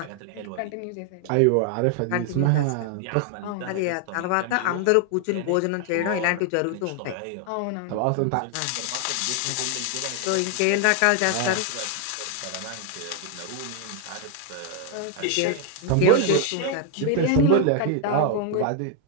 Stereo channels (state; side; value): different; both; correlation 0.00